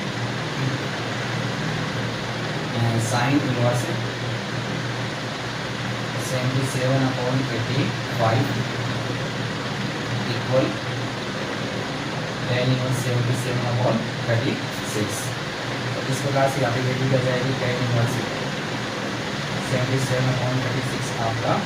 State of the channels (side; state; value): both; identical; correlation 1.00